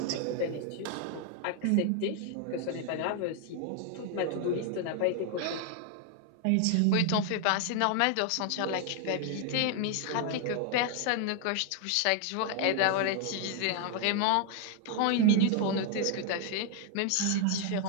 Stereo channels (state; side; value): different; both; correlation 0.00